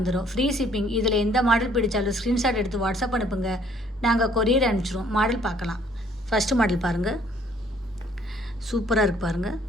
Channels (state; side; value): normal; both; correlation 0.61